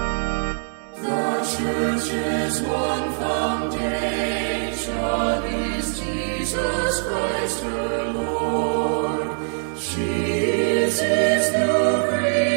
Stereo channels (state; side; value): silent; left; 63 dB below the other